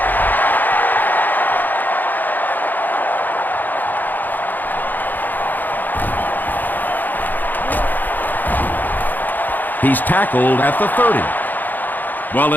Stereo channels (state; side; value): late; right; 0.086 ms